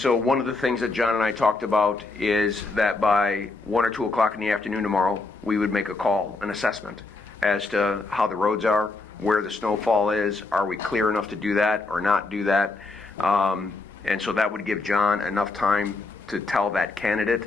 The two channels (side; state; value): right; quieter; 3.5 dB